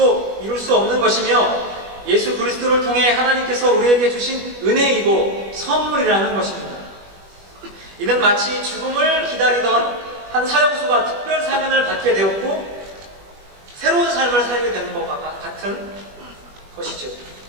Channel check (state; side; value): late; left; 21 ms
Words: 이룰 수 없는 것이며 예수 그리스도를 통해 하나님께서 우리에게 주신 은혜이고 선물이라는 것입니다. 이는 마치 죽음을 기다리던 한 사형수가 특별 사면을 받게 되었고 새로운 삶을 살게 되는 것과 같은 것이죠.